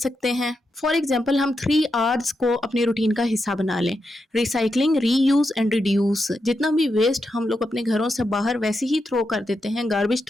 हैं। फॉर एग्जाम्पल, हम 3 Rs को अपने रूटीन का हिस्सा बना लें। Recycling, reuse and reduce. जितना भी वेस्ट हम लोग अपने घरों से बाहर वैसे ही थ्रो कर देते हैं, गार्बेज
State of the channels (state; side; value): normal; both; correlation 0.85